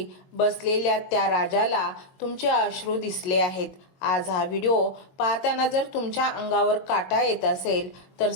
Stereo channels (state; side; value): late; right; 22 ms